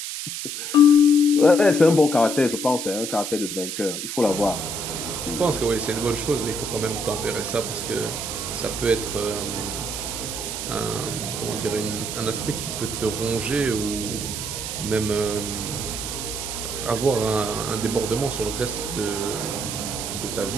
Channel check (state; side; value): noise; right; hiss, 5 dB below the sound